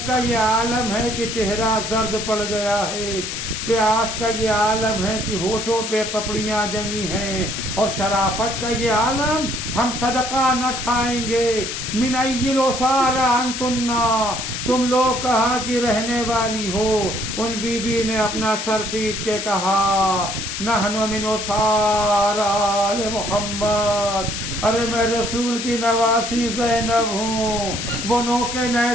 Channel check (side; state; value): left; noise; hiss, 5 dB below the sound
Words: کا یہ عالم ہے کہ چہرہ زرد پڑ گیا ہے، پیاس کا یہ عالم ہے کہ ہونٹوں پہ پپڑیاں جمی ہیں، اور شرافت کا یہ عالم ہم صدقہ نہ کھائیں گے۔ من ای الاسار انتن، تم لوگ کہاں کی رہنے والی ہو؟ ان بی بی نے اپنا سر پیٹ کے کہا نحن من اسار آل محمد، ارے میں رسول کی نواسی زینب ہوں۔ وہ نوکے